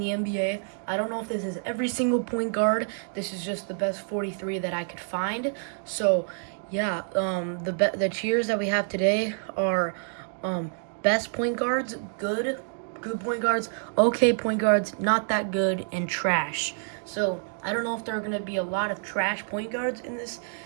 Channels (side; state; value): left; silent; digital silence